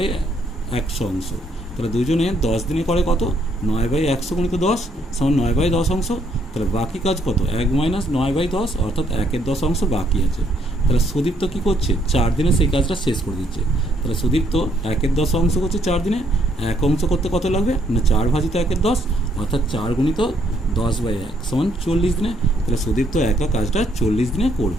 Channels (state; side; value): normal; both; correlation 0.70